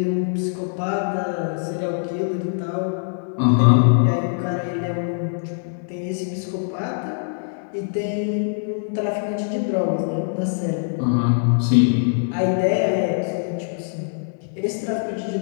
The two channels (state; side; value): silent; right; digital silence